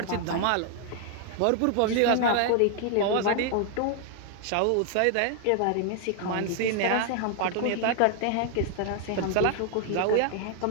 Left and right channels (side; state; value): both; different; correlation 0.00